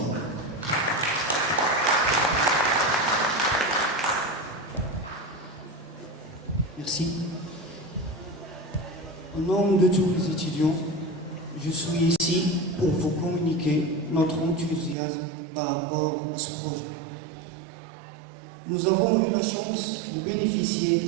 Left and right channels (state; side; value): drops out; left; at 15.0 s